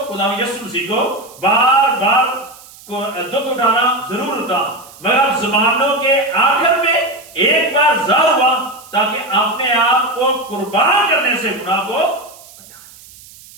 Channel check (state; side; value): noise; right; hiss, 21 dB below the sound